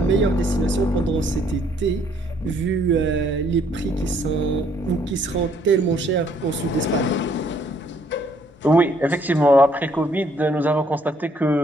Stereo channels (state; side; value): normal; both; correlation 0.66